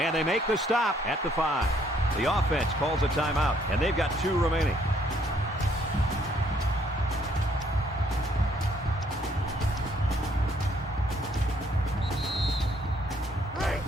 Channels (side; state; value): both; normal; correlation 0.66